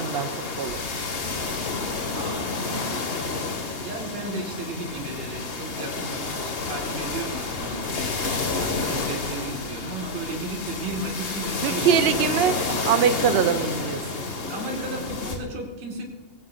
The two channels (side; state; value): left; late; 2.8 ms